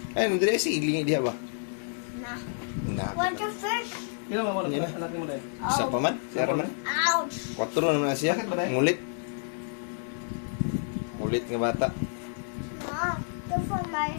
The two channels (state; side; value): silent; right; digital silence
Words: Ay, nandito si ilingi diha ba? Nah. Na. What the fish? Pino mo Yan. anak mo na eh. Isa pa man? Isa pa man? Ouch! 4 na naman siya. Sakit ba, Day? Ngulit. Ngulit nga bata. Mom, look for my